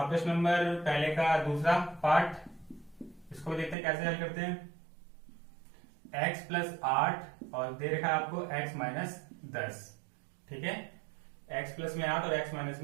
प्रश्न नंबर पहले का दूसरा पार्ट, इसको देखते हैं कैसे हल करते हैं। x प्लस 8 और दे रखा है आपको x माइनस 10, ठीक है। x प्लस में 8 और x माइनस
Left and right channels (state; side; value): drops out; left; at 3.8 s